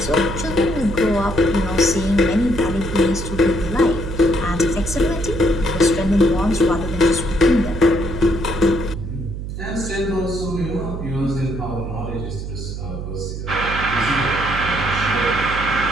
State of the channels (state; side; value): noise; right; hum, 7 dB below the sound